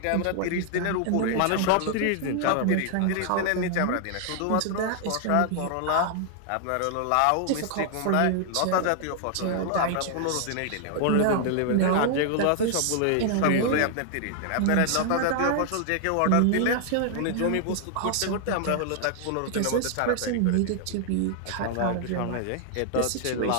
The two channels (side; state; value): both; different; correlation 0.00